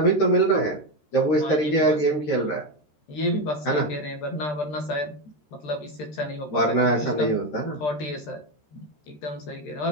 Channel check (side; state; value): right; late; 13 ms